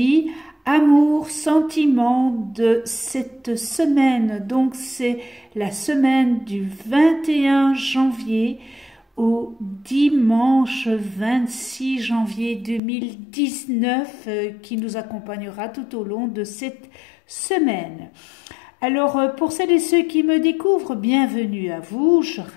amour, sentiments de cette semaine. Donc c'est la semaine du 21 janvier au dimanche 26 janvier 2019 qui nous accompagnera tout au long de cette semaine. Alors, pour celles et ceux qui me découvrent, bienvenue à vous. Je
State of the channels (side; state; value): right; drops out; at 12.8 s